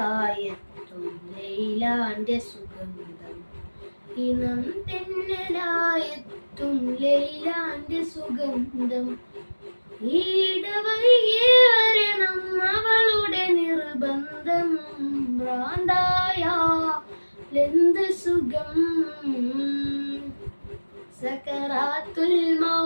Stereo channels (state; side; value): inverted; both; correlation -1.00